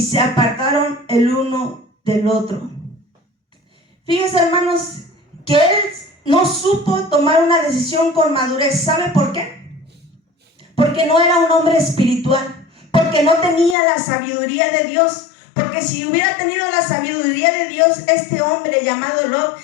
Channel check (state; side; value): drops out; right; at 13.8 s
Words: se apartaron el uno del otro. Fíjense, hermanos, que él no supo tomar una decisión con madurez. ¿Sabe por qué? Porque no era un hombre espiritual, porque no tenía la sabiduría de Dios. Porque si hubiera tenido la sabiduría de Dios, este hombre llamado Lot